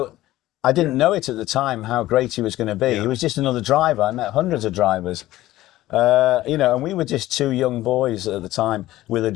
I didn't know it at the time how great he was going to be. He was just another driver. I met hundreds of drivers, you know, and we were just two young boys at the time with a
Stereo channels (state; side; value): quieter; right; 15.8 dB